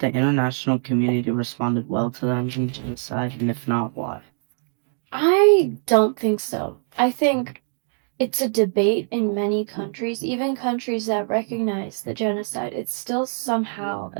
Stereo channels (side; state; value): left; silent; 63 dB below the other